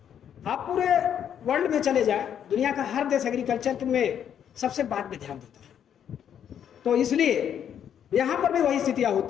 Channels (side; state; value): right; quieter; 9.1 dB